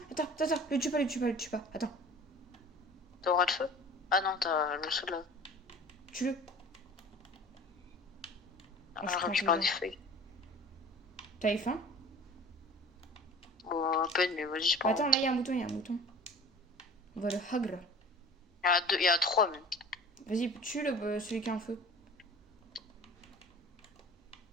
le tue pas, le tue pas, le tue pas. Attends, T'as aura de feu? Ah non, t'as le seul là. tue-le. Ah, Oh, je je prends récupère des toujours. feuilles. T'avais faim? Bon, à peine, mais vas-y, c'est pas grave. Attends, là, il y a un mouton, il y a un mouton. On va le hagre. Il y a 2, il y a 3 même. Vas-y, tue celui qui a un feu.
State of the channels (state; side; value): normal; both; correlation 0.43